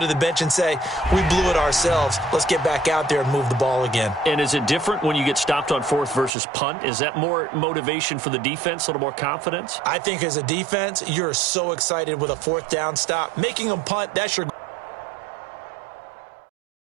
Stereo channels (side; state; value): left; drops out; at 6.3 s